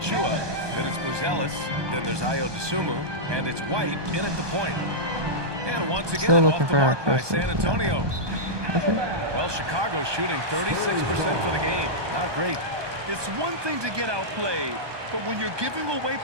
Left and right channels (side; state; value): left; late; 1.2 ms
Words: Then it's Buzelis. Then there's Ayo Dosunmu. And it's White in at the point. And once again, off the mark by San Antonio. Well, Chicago's shooting 36% for the game. Not great. It's one thing to get outplayed, but when you're giving away